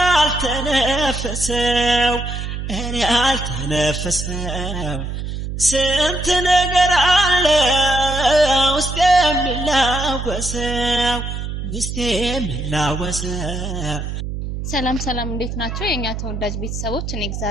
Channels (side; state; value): right; noise; hum, 5 dB below the sound